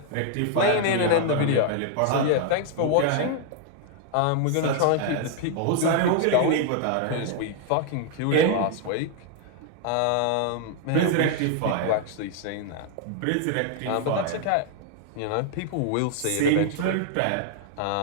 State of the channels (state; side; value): different; both; correlation 0.00